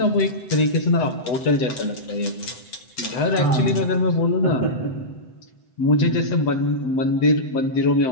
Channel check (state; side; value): late; right; 7.9 ms